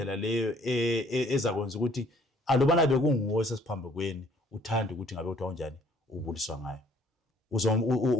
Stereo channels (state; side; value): normal; both; correlation 0.59